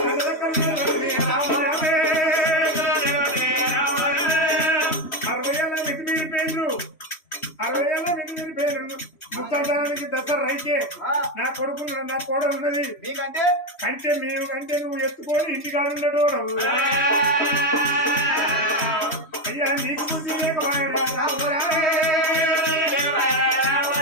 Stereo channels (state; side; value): late; right; 3.1 ms